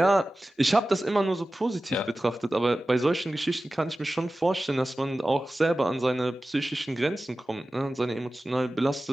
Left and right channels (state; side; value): normal; both; correlation 0.95